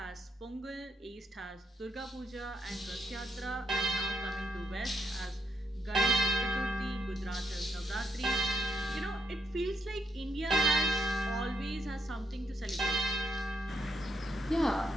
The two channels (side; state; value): both; normal; correlation 0.79